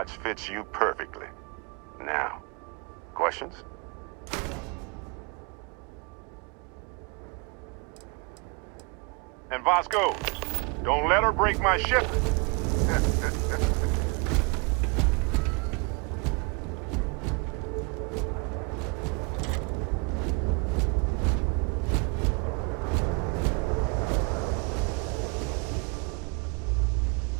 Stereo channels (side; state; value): left; quieter; 31.8 dB